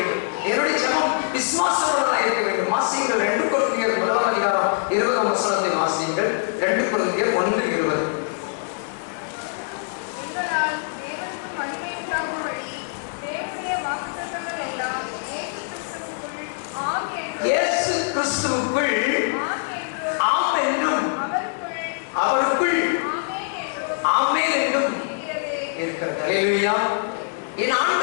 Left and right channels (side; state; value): right; silent; 63 dB below the other